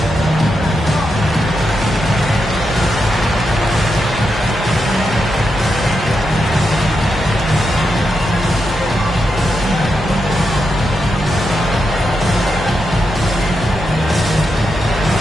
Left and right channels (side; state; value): both; normal; correlation 0.85